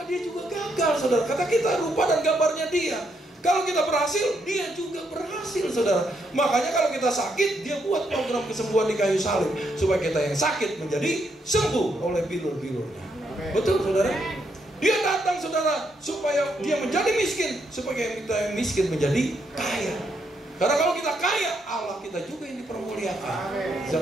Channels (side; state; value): both; normal; correlation 0.77